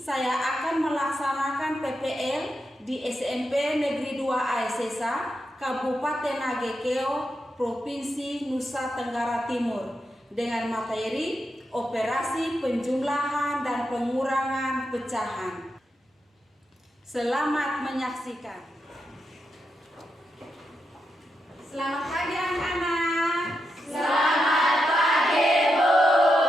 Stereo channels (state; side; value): normal; both; correlation 0.85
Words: akan melaksanakan PPL di SMP Negeri 2 Aesesa, Kabupaten Agekeo, Provinsi Nusa Tenggara Timur, dengan materi operasi penjumlahan dan pengurangan pecahan. Selamat menyaksikan. Selamat pagi anak-anak. Selamat pagi, Bu.